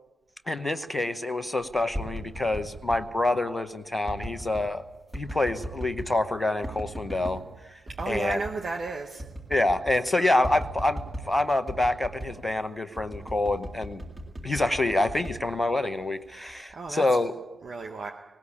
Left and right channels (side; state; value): both; normal; correlation 0.91